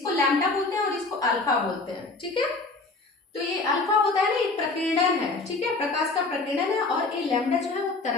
लैम्डा बोलते हैं और इसको अल्फा बोलते हैं। ठीक है, तो ये अल्फा होता है ना, ये प्रकीर्णन है। ठीक है, प्रकाश का प्रकीर्णन है, और ये लैम्डा जो है वो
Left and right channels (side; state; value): right; quieter; 3.5 dB